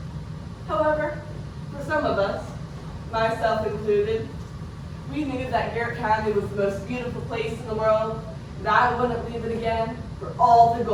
However, for some of us, myself included, we knew that Garrett County was the most beautiful place in the world, and I wouldn't leave it again for all the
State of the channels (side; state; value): both; identical; correlation 1.00